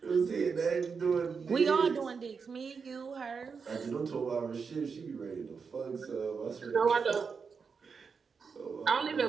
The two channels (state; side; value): quieter; left; 5.5 dB